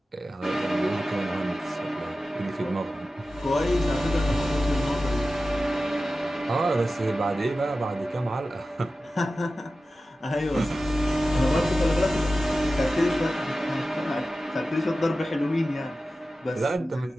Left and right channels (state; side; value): normal; both; correlation 0.94